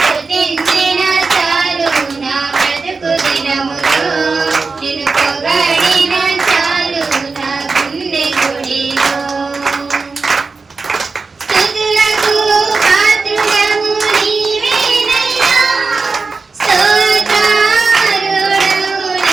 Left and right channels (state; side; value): quieter; left; 4.3 dB